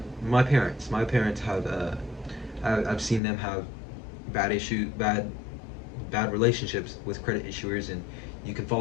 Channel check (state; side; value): drops out; right; at 3.2 s